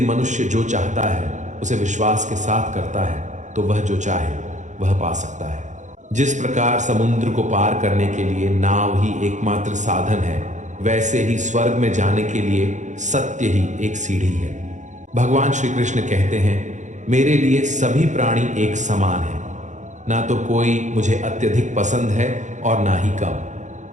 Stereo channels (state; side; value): late; left; 0.35 ms